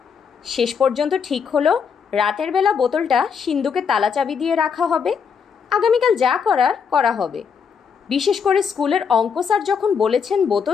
শেষ পর্যন্ত ঠিক হলো রাতের বেলা বোতলটা সিন্ধুকে তালা চাবি দিয়ে রাখা হবে। আগামীকাল যা করার করা হবে। বিশেষ করে স্কুলের অঙ্ক স্যার যখন বলেছেন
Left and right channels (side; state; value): right; quieter; 6.4 dB